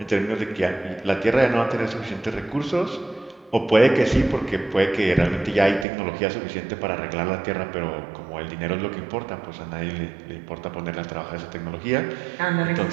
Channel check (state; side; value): drops out; left; at 5.9 s